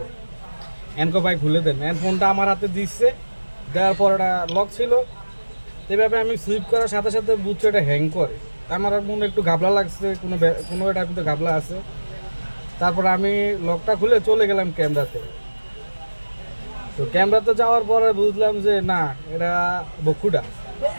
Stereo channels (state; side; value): inverted; both; correlation -1.00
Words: এনকো ভাই খুলে দেন। ফোনটা আমার হাতে দিচ্ছে, দেওয়ার পর এটা লক ছিল। এভাবে আমি সুইপ করার সাথে সাথে বুঝছি এটা হ্যাং করে। আমার মনে একটু ঘাবলা লাগছে, কোনো এটা কিন্তু ঘাবলা আছে। তারপর আমি লকটা খুলে চলে গেলাম ক্যামেরাতে। তো ক্যামেরাতে যাওয়ার পরে বুঝলাম যে না, এটা বকুটা,